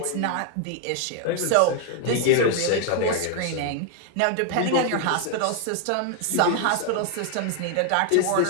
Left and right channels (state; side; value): different; both; correlation 0.00